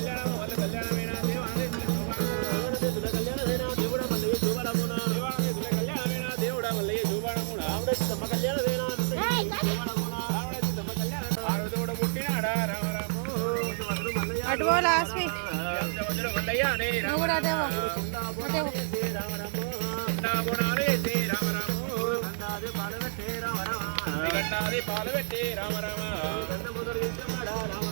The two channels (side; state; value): left; silent; 58 dB below the other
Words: వల్ల కళ్యాణమైన దేవుడా మళ్ళీ చూపడమున తమ కళ్యాణమైన ఆరుదోడ పుట్టినాడా రామరాము అటు లాస్వి నువ్వు కూడా అదేవో అదేవో పాలు పెట్టి రామరామ